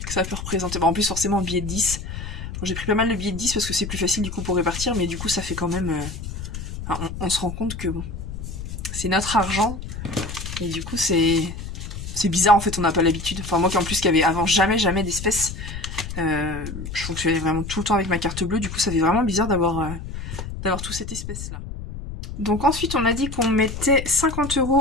ça peut représenter. Bon, en plus forcément un billet de 10. Bon, j'ai pris pas mal de billets de 10 parce que c'est plus facile du coup pour répartir, mais du coup ça fait quand même... on se rend compte que bon, c'est notre argent et du coup c'est bizarre en fait, on n'a pas l'habitude. Enfin moi qui en plus qui avait avant jamais d'espèces, je fonctionnais vraiment tout le temps avec ma carte bleue, du coup ça fait vraiment bizarre d'avoir toute cette espèce là. Donc ensuite on a dit qu'on mettait 50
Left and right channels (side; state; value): left; noise; rumble, 8 dB below the sound